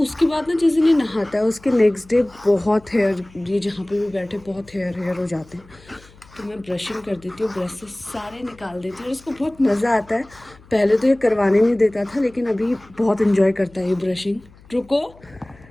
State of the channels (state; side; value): noise; left; hum, 25 dB below the sound